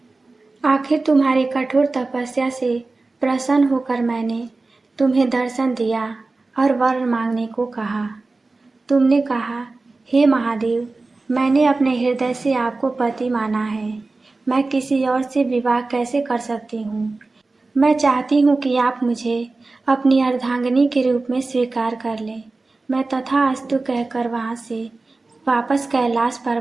आखिर तुम्हारी कठोर तपस्या से प्रसन्न होकर मैंने तुम्हें दर्शन दिया और वर मांगने को कहा। तुमने कहा, हे महादेव, मैंने अपने हृदय से आपको पति माना है। मैं किसी और से विवाह कैसे कर सकती हूँ। मैं चाहती हूँ कि आप मुझे अपनी अर्धांगिनी के रूप में स्वीकार कर लें। मैं तथास्तु कहकर वहाँ से वापस कैलाश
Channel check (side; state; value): left; quieter; 3.5 dB